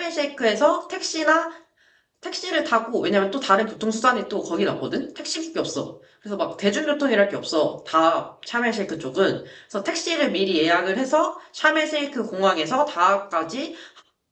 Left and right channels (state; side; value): identical; both; correlation 1.00